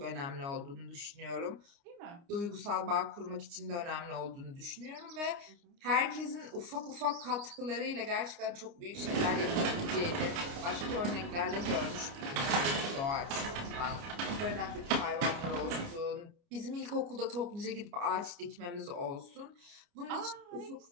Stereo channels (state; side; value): late; left; 29 ms